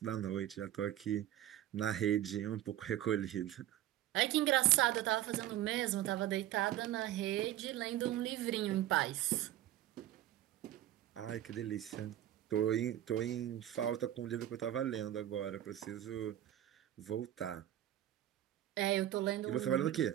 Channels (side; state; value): left; quieter; 12.8 dB